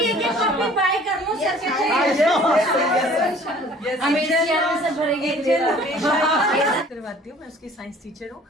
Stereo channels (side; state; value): both; normal; correlation 0.52